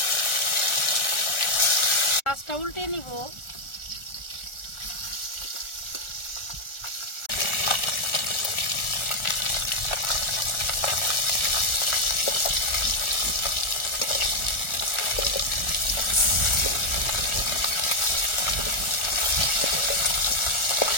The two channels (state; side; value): late; right; 1.4 ms